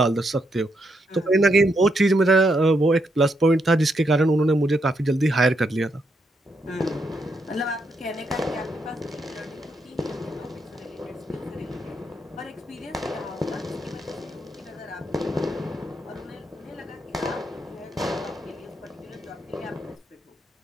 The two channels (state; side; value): normal; both; correlation 0.79